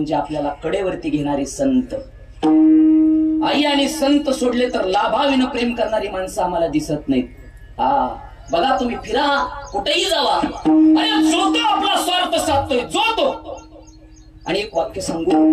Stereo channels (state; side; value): identical; both; correlation 1.00